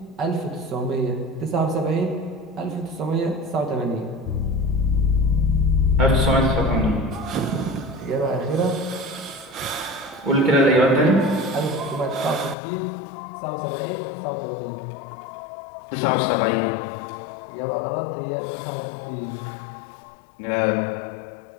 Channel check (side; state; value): right; drops out; at 12.6 s